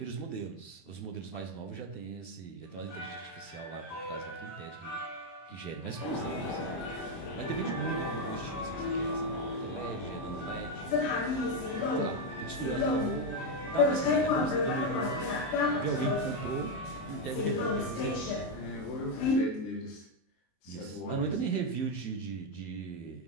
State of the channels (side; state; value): right; late; 23 ms